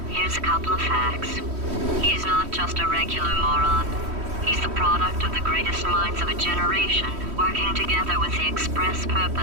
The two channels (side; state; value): left; late; 3.1 ms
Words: here's a couple of facts. He's not just a regular moron. He's the product of the greatest minds of a generation, working together with the express